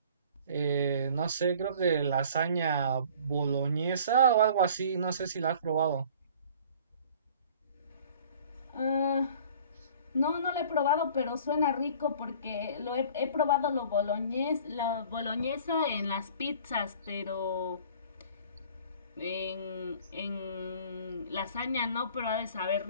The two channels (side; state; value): both; inverted; correlation -0.48